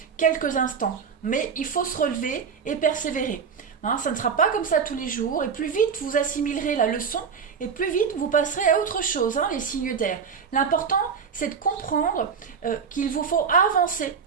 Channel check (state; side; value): quieter; left; 6.3 dB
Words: quelques instants. Mais il faut se relever et persévérer. Hein, ça ne sera pas comme ça tous les jours, et plus vite vous assimilerez la leçon, et plus vite vous passerez à autre chose, hein, les signes d'air. L'important, c'est de comprendre qu'il vous faut avancer